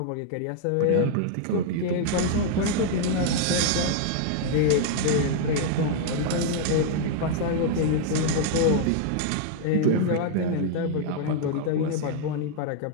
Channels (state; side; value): different; both; correlation 0.00